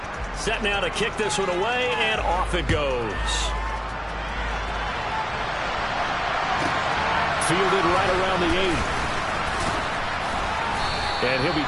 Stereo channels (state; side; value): identical; both; correlation 1.00